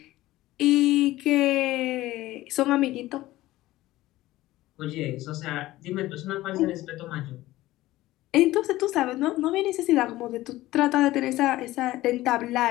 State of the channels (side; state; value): right; quieter; 16.8 dB